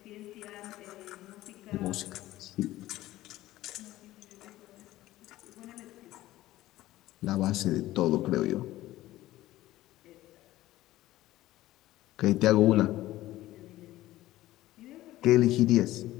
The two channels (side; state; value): right; quieter; 15.9 dB